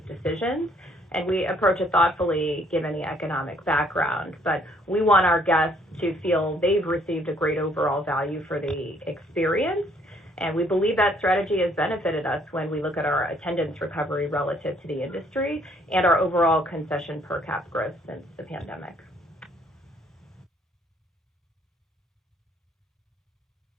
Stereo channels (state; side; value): normal; both; correlation 0.65